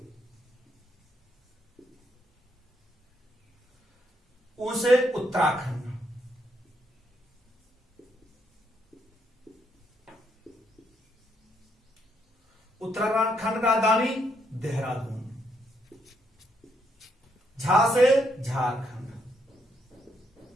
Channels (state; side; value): normal; both; correlation 0.75